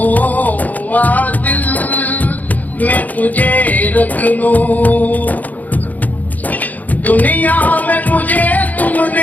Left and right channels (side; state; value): right; late; 0.080 ms